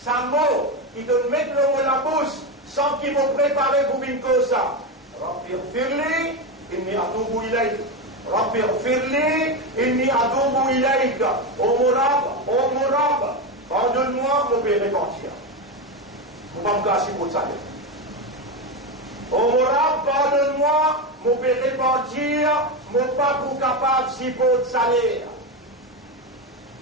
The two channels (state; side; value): normal; both; correlation 0.14